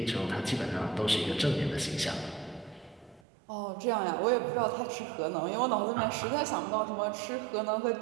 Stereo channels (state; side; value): drops out; left; at 3.2 s